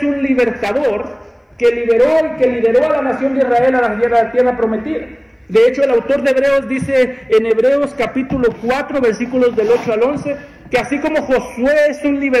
un libertador que lideró a la nación de Israel a la tierra prometida. De hecho, el autor de Hebreos dice en Hebreos capítulo 4, versículos del 8 al 11, que así como Josué es un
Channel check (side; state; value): both; identical; correlation 1.00